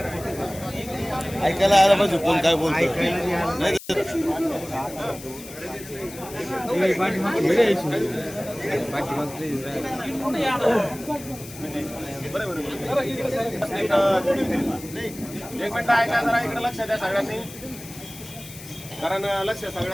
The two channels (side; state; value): left; noise; hiss, 15 dB below the sound